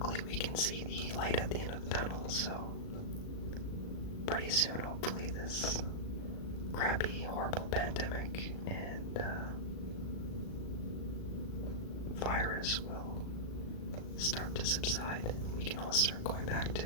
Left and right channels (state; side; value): late; right; 37 ms